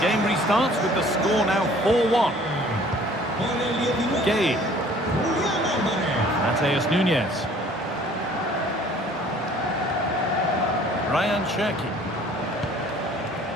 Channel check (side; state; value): both; normal; correlation 0.53